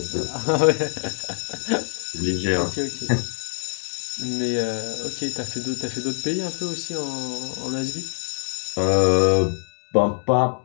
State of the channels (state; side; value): silent; right; digital silence